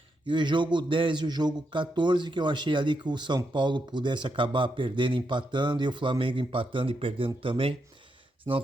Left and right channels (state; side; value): normal; both; correlation 0.82